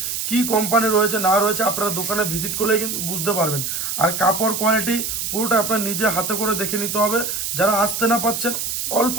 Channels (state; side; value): noise; right; hiss, 3 dB below the sound